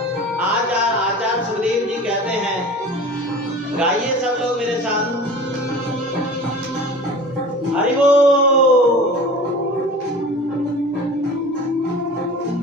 आज आचार्य सुखदेव जी कहते हैं, गाइए सब लोग मेरे साथ, हरि बोल।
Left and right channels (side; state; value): both; normal; correlation 0.39